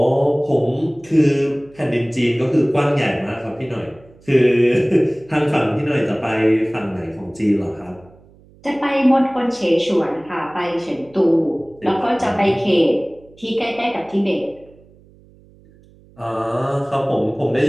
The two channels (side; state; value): right; noise; hum, 27 dB below the sound